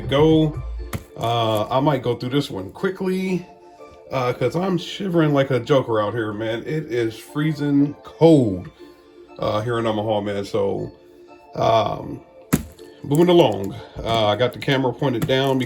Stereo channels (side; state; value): both; identical; correlation 1.00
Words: go. I might go through this one quickly because I'm shivering like a joker out here, man. It is freezing cold here in Omaha, man. So moving along, I got the camera pointed down